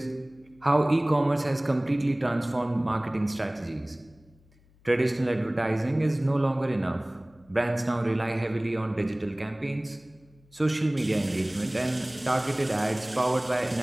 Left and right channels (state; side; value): noise; left; hum, 30 dB below the sound